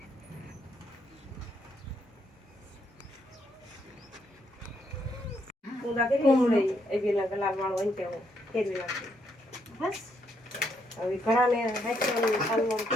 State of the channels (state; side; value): normal; both; correlation 0.75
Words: કુમળી એવી ના ગલા વાળો અંતે ફેરવી નાખી બસ હવે ઘણાને હાથમાં સાલમાં